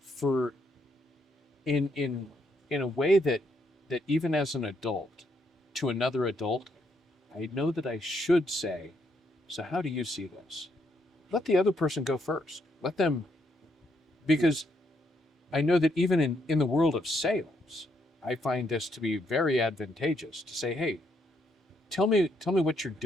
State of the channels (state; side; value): normal; both; correlation 0.74